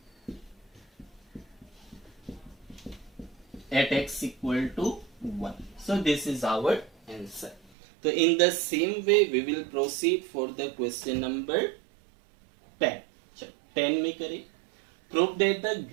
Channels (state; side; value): drops out; left; at 7.7 s